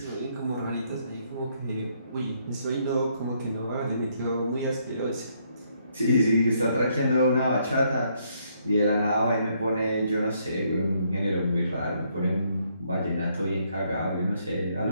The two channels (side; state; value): both; inverted; correlation -0.71